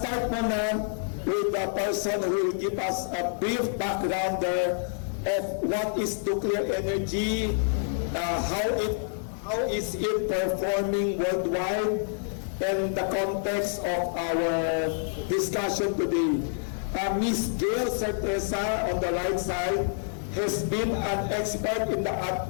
muna with the person who will give us a brief background of what is nuclear energy, how is it performing worldwide, and the context of our discussion today. Ms. Gayle Certeza on the right side has been an expert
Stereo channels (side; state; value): right; silent; 60 dB below the other